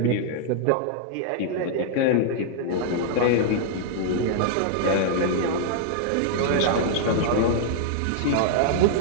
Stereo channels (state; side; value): different; both; correlation -0.01